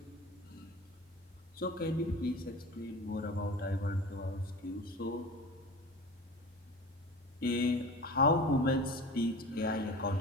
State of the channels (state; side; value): normal; both; correlation 0.35